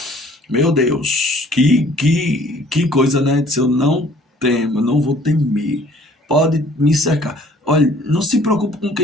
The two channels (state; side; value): normal; both; correlation 0.56